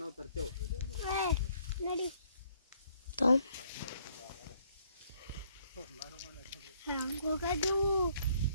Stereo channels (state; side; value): inverted; both; correlation -0.66